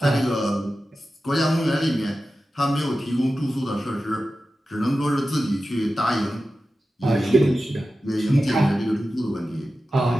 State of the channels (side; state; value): both; normal; correlation 0.93